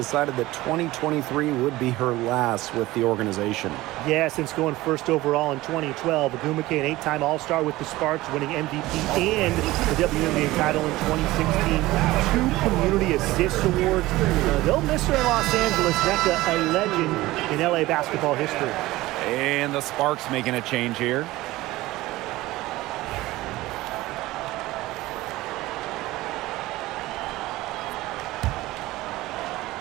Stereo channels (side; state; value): left; quieter; 18.1 dB